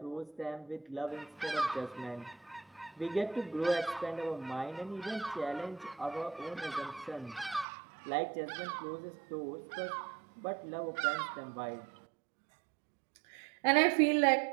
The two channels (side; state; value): left; drops out; at 7.7 s